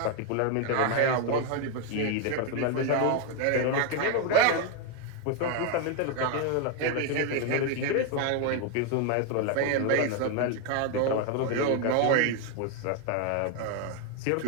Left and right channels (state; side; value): different; both; correlation 0.01